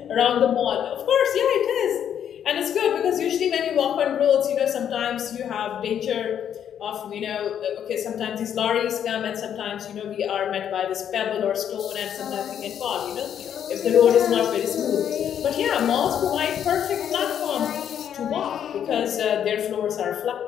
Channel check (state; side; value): quieter; right; 9.2 dB